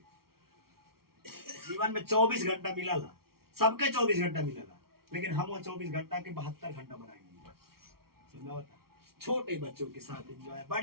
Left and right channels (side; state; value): left; late; 0.94 ms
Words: जीवन में 24 घंटा मिला ला सबके 24 घंटा मिला ला लेकिन हम वो 24 घंटा के 72 घंटा बनाएंगे समझा होता छोटे बच्चों के साथ एंजॉय